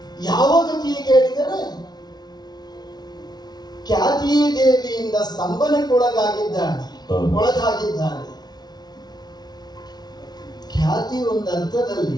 ಯಾವ ಗತಿ ಕೇಳಿದರೆ ಖ್ಯಾತಿ ದೇವಿಯಿಂದ ಸ್ತಂಭನಕ್ಕೊಳಗಾಗಿದ್ದಾನೆ. ಖ್ಯಾತಿ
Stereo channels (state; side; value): late; right; 0.19 ms